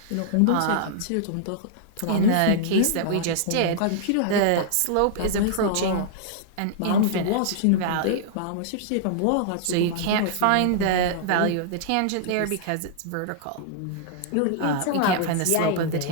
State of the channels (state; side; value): different; both; correlation -0.01